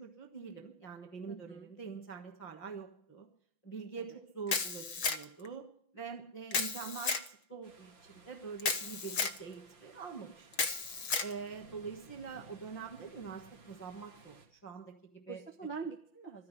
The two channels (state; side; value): late; right; 6.4 ms